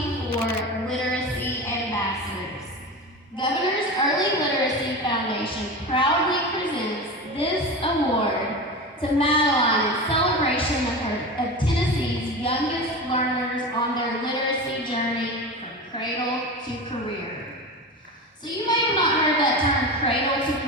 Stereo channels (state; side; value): normal; both; correlation 0.27